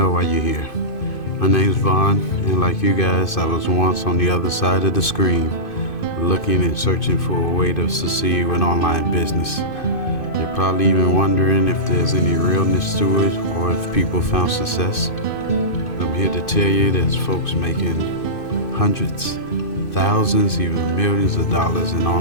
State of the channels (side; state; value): right; late; 2.5 ms